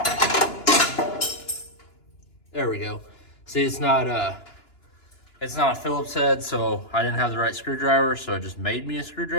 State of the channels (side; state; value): right; late; 2.9 ms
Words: There we go. See, it's not a Phillips head, so I didn't have the right screwdriver, so it just made me a